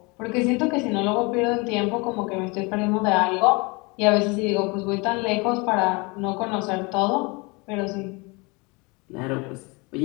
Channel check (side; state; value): right; quieter; 27.8 dB